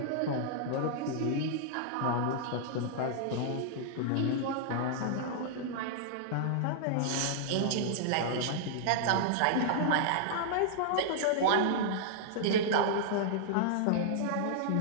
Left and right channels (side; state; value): both; different; correlation -0.01